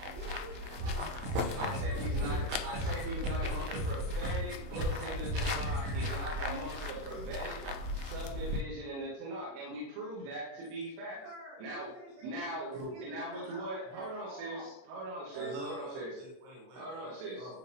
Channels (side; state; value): left; late; 31 ms